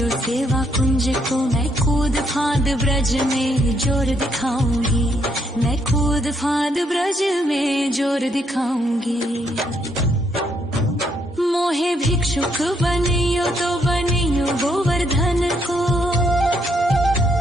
सेवा कुंज को। मैं कूद फांद ब्रज में जोर दिखाऊंगी। मैं कूद फांद ब्रज में जोर दिखाऊंगी। मोहे भिक्षुक बनियो तो बनियो गोवर्धन को।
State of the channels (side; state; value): both; normal; correlation 0.73